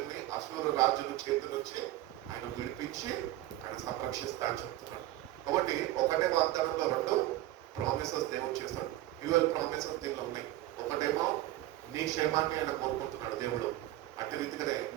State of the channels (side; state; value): left; quieter; 15.6 dB